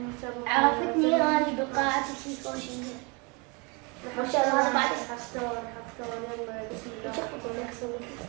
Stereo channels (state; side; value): quieter; left; 30.3 dB